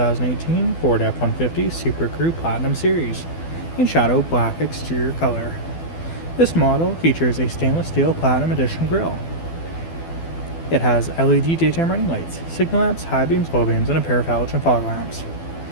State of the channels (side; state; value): right; late; 12 ms